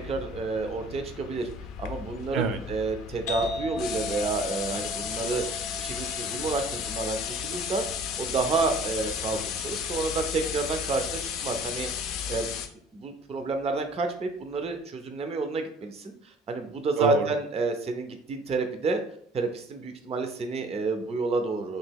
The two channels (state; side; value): normal; both; correlation 0.51